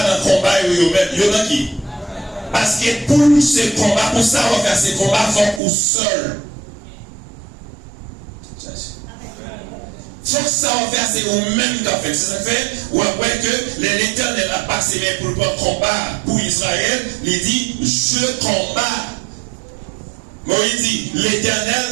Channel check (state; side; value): drops out; left; at 5.6 s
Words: le combat, il y en a qui. Parce que pour ce combat, pour ça, on va faire ce combat, il faut qu'on seul. Faut que ça va faire, c'est vous-même qui a fait. C'est ça fait, ou après que l'Éternel a passé pour le combat pour Israël, il dit, je combats. Moïse dit,